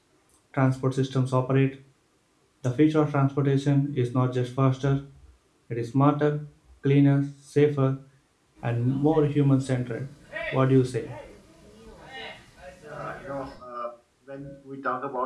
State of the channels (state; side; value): identical; both; correlation 1.00